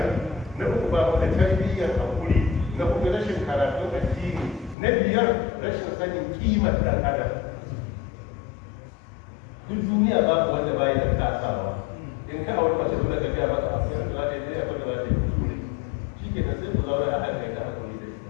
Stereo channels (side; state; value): right; drops out; at 4.8 s